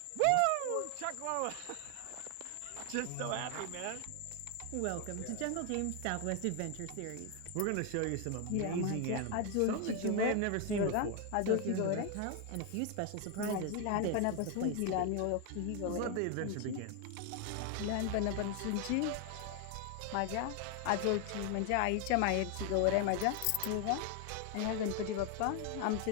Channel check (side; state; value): both; different; correlation 0.01